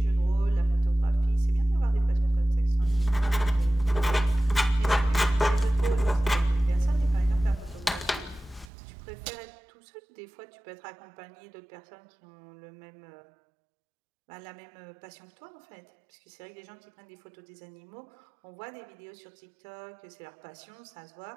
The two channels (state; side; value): drops out; left; at 8.7 s